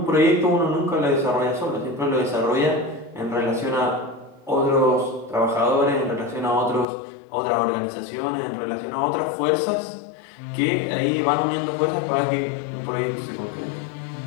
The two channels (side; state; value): right; drops out; at 6.9 s